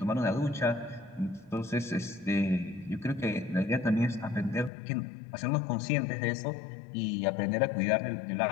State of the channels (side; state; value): right; drops out; at 4.7 s